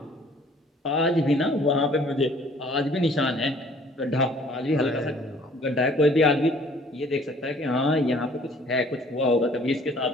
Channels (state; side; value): normal; both; correlation 0.55